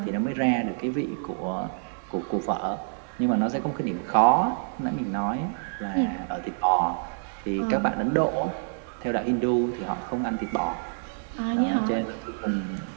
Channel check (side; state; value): left; silent; 60 dB below the other